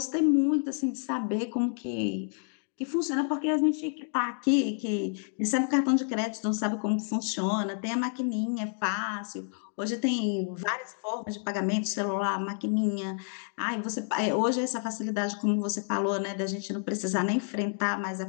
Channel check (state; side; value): silent; right; 58 dB below the other